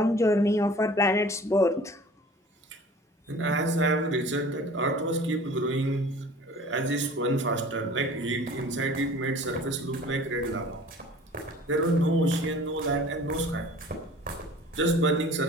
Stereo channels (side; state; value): both; normal; correlation 0.46